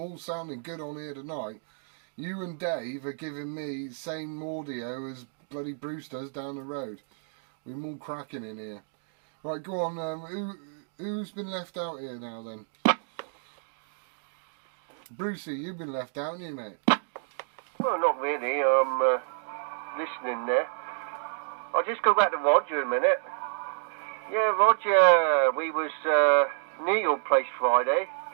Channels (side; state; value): left; silent; digital silence